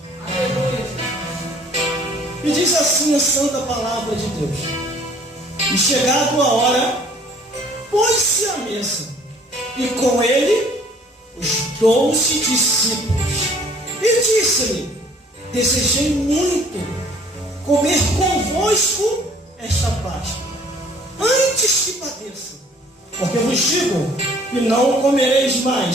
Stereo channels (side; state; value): both; normal; correlation 0.56